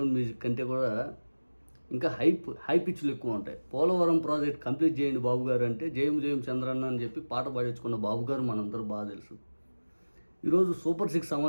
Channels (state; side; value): inverted; both; correlation -1.00